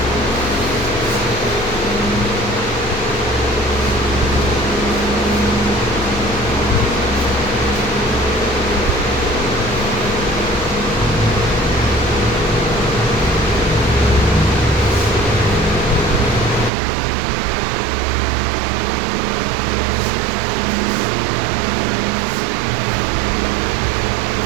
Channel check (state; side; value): drops out; left; at 16.7 s